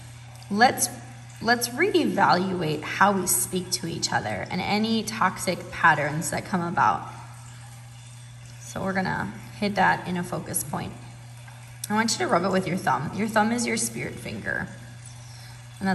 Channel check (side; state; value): both; identical; correlation 1.00